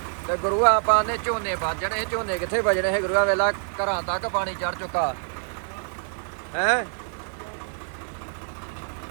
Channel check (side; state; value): left; silent; 61 dB below the other